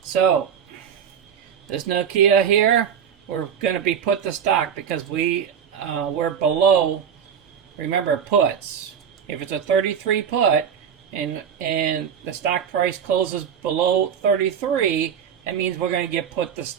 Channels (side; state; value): left; quieter; 7.9 dB